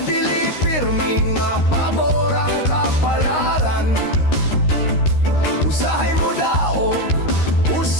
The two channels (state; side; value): late; right; 13 ms